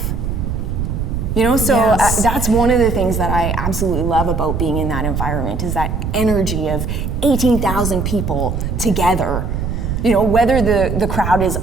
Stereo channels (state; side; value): noise; right; rumble, 2 dB below the sound